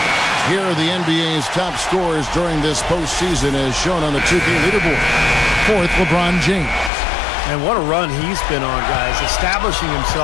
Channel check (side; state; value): right; drops out; at 6.9 s